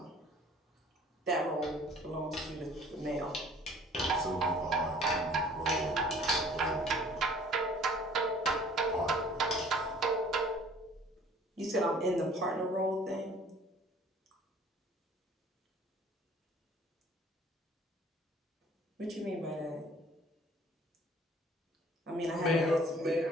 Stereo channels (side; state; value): both; normal; correlation 0.52